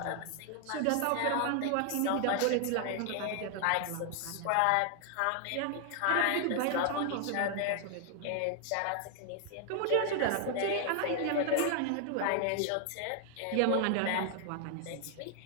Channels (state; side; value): different; both; correlation 0.00